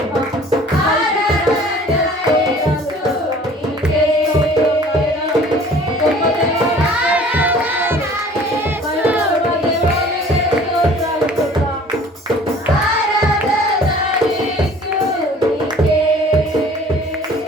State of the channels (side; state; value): both; normal; correlation 0.49